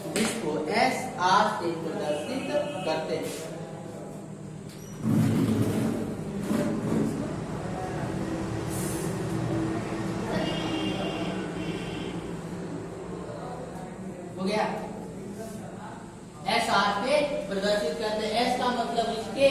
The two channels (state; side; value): identical; both; correlation 1.00